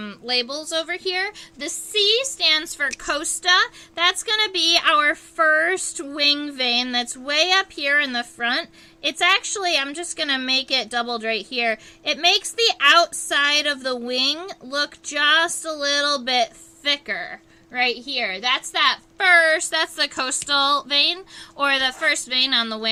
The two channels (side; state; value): both; identical; correlation 1.00